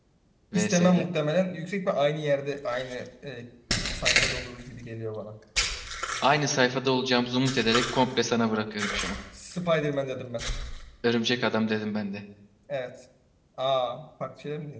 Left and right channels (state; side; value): identical; both; correlation 1.00